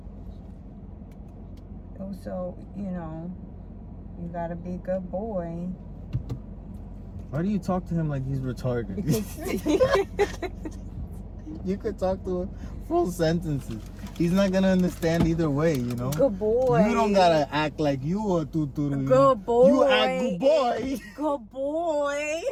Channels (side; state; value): both; identical; correlation 1.00